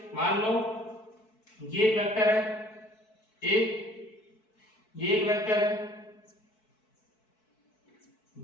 मान लो ये एक vector है ए, ये एक vector है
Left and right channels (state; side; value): late; right; 4.6 ms